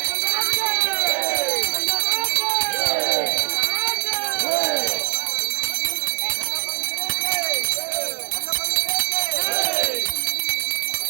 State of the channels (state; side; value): silent; left; digital silence